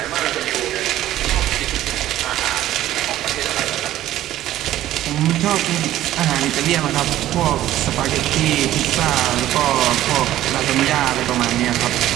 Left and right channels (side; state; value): left; quieter; 13.6 dB